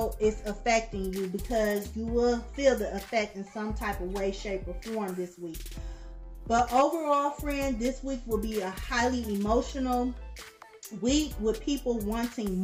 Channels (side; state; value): both; identical; correlation 1.00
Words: it's affecting you, because you will feel the effect in some type of way, shape, or form this week. But overall, friend, this week will be a highly emotional week with people wanting